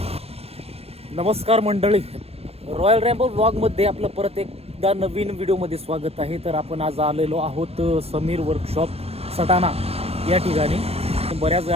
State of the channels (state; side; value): late; left; 0.29 ms